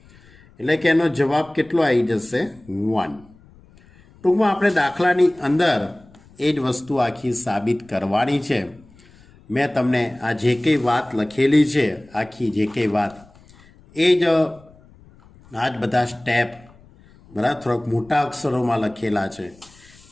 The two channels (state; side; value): noise; left; rumble, 26 dB below the sound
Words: એટલે કે એનો જવાબ કેટલો આવી જશે? 1. ટૂંકમાં આપણે દાખલાની અંદર એ જ વસ્તુ આખી સાબિત કરવાની છે. મેં તમને આ જે કંઈ વાત લખેલી છે, આખી જે કંઈ વાત, એ જ આ જ બધા સ્ટેપ બરાબર થોડાક મોટા અક્ષરોમાં લખેલા છે.